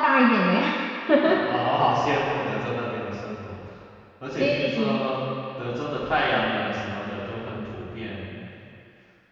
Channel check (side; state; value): both; identical; correlation 1.00